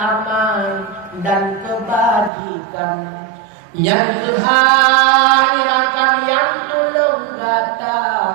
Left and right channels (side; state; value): left; drops out; at 2.3 s